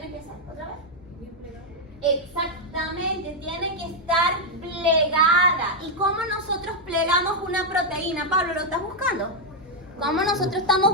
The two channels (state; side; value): normal; both; correlation -0.01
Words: que hacer? ¿Otra vez? Exactamente, tiene que estar plegada. ¿Y cómo nosotros plegamos una proteína? Pablo, ¿lo estás buscando? ¿Cómo nosotros estamos